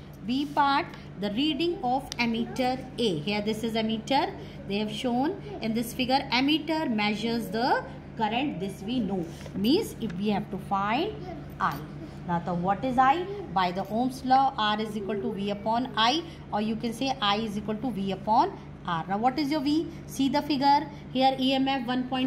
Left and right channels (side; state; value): both; identical; correlation 1.00